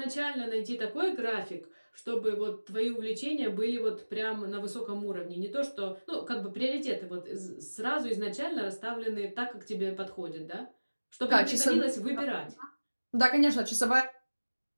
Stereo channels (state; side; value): inverted; both; correlation -1.00